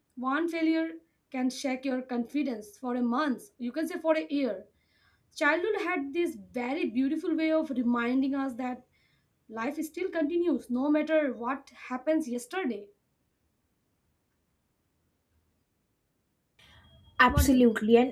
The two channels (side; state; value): both; identical; correlation 1.00